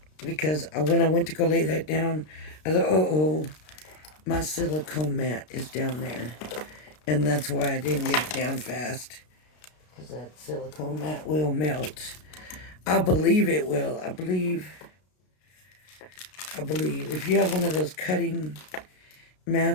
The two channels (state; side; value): late; right; 33 ms